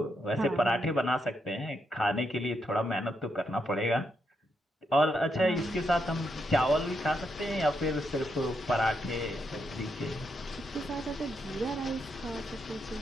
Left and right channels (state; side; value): normal; both; correlation 0.80